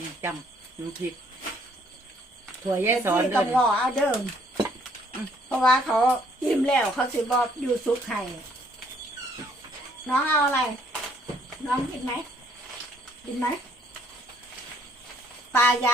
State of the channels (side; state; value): both; normal; correlation 0.65